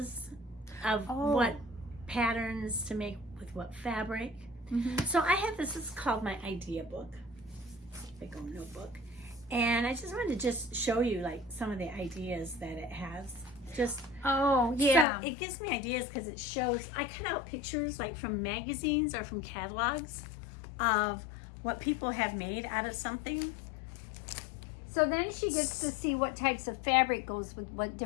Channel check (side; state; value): right; drops out; at 15.1 s